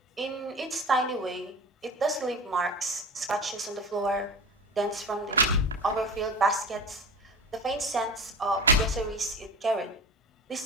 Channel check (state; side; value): normal; both; correlation 0.32